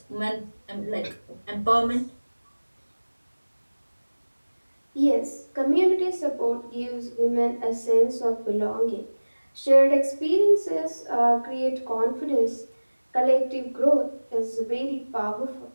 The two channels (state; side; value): inverted; both; correlation -1.00